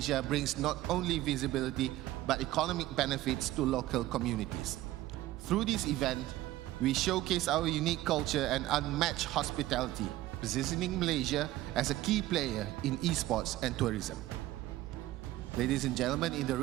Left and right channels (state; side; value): quieter; left; 15.9 dB